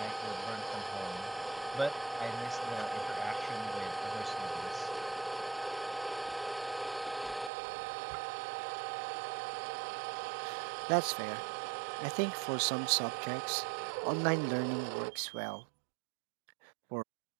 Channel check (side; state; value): left; drops out; at 7.5 s